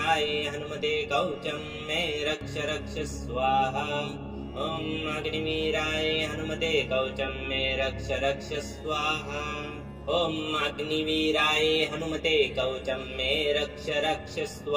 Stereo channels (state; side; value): identical; both; correlation 1.00